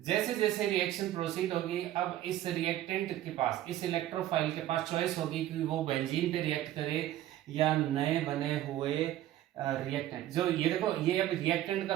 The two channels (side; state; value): left; quieter; 13.3 dB